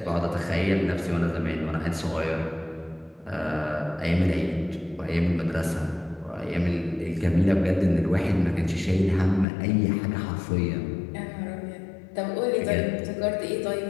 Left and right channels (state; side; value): drops out; right; at 9.5 s